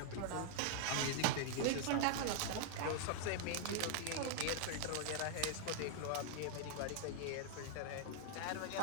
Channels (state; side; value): different; both; correlation -0.01